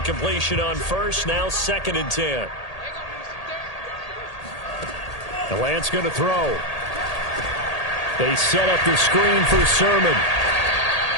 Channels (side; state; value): right; late; 1.8 ms